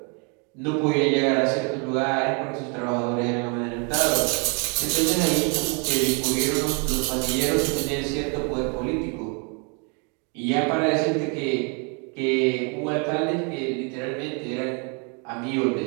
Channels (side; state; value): left; quieter; 35.5 dB